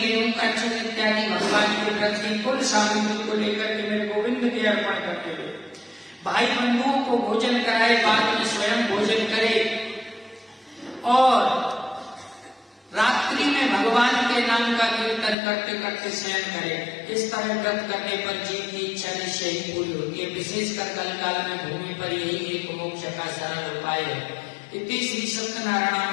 का चूर्ण इत्यादि भगवान के प्रति कुल सामग्री को लेकर के मेरे गोविंद के अर्पण करते हुए भाई बंधुओं को भोजन कराए, बाद में स्वयं भोजन करे और रात्रि में भगवान के नाम का कीर्तन करते करते शयन करे। इस तरह व्रत करने पर जीव की इच्छा निश्चय ही पूरी होती है। विशेषकर कल काल में भूमि पर यही एक मोक्ष का सरल उपाय है। इति श्री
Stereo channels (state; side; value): drops out; right; at 15.4 s